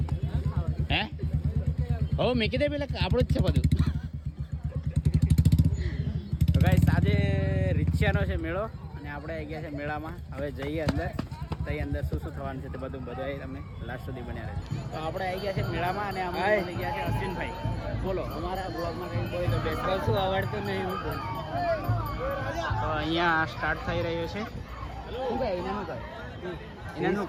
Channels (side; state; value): both; identical; correlation 1.00